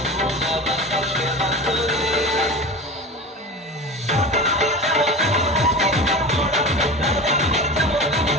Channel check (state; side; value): normal; both; correlation 0.31